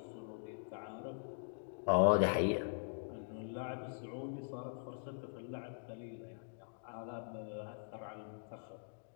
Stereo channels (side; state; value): right; silent; digital silence